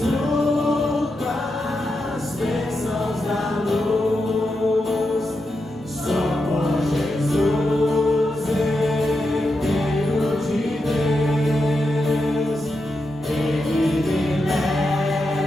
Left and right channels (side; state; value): both; normal; correlation 0.86